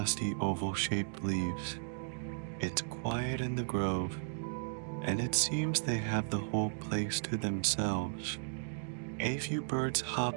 oval-shaped leaves. It's quiet in the grove, and it seems they have the whole place to themselves. A few birds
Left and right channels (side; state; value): left; silent; digital silence